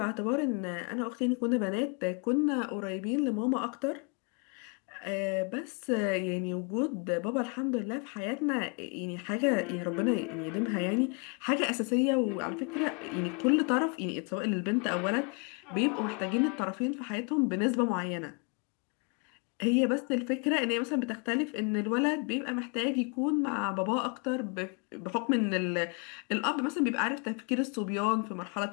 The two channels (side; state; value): right; quieter; 35.4 dB